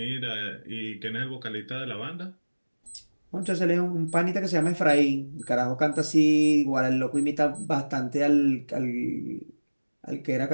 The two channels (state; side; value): inverted; both; correlation -1.00